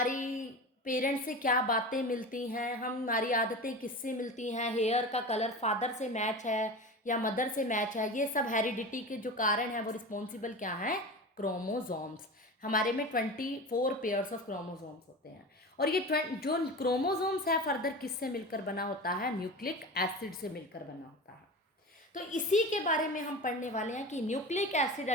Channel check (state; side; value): normal; both; correlation 0.30